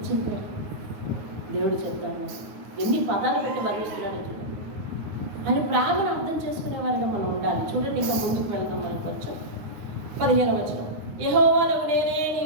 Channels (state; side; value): late; left; 9.5 ms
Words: చెప్పాడు? దేవుడు చెప్తాను. ఎన్ని పదాలు పెట్టి వర్ణిస్తున్నాడు చూడండి. ఆయన ప్రేమను అర్థం చేసుకునేవారిగా మనం ఉండాలి. చూడండి, ఇంకా ముందుకు వెళ్దాం. మనం కొంచెం 15వ వచనం. యెహోవానగు నేనే